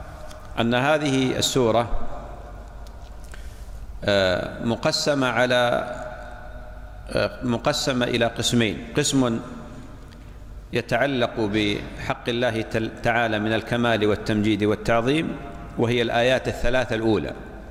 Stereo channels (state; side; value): identical; both; correlation 1.00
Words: أن هذه السورة مقسمة إلى قسمين: قسم يتعلق بحق الله تعالى من الكمال والتمجيد والتعظيم وهي الآيات الثلاثة الأولى،